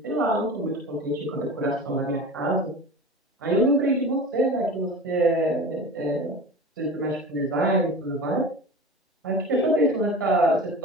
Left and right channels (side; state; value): both; normal; correlation 0.34